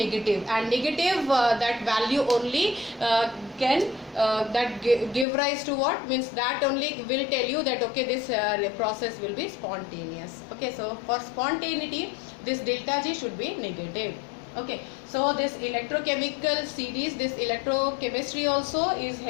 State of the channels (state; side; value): drops out; right; at 5.2 s